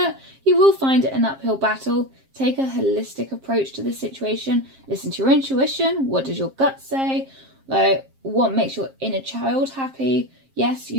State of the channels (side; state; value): left; late; 7.5 ms